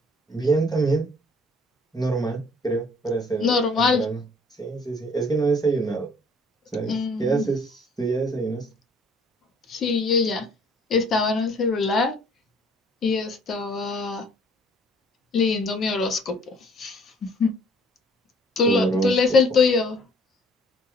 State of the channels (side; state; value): both; normal; correlation 0.56